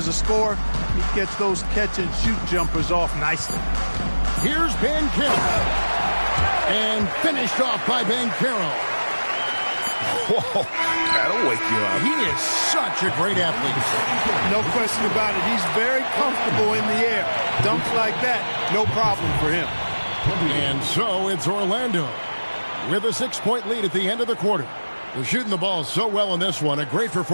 a scorer. He gets those catch-and-shoot jumpers off nicely. Here's Banchero. And finished off by Banchero. Whoa, that'll wake you up. He is such a great athlete. No question about it. He's very comfortable in the air. Dunks like that, no problem for him. And so it's Orlando with a 6-point lead at the end of the quarter. They're shooting the ball so well in this one. A great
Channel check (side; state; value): both; inverted; correlation -1.00